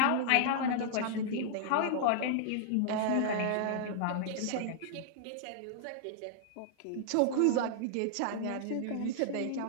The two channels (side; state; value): both; different; correlation -0.01